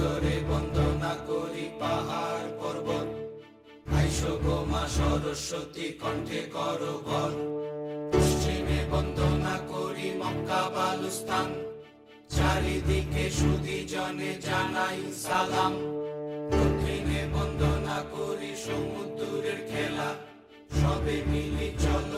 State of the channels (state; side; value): identical; both; correlation 1.00